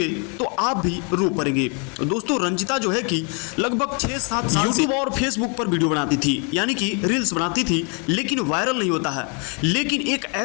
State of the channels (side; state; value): right; quieter; 36.2 dB